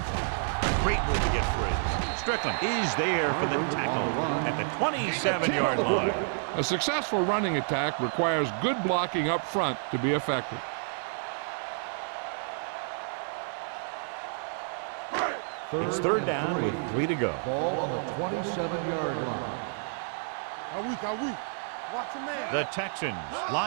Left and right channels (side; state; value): left; silent; digital silence